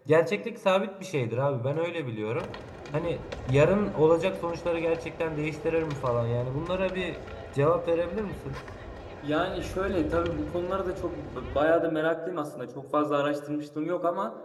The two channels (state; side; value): identical; both; correlation 1.00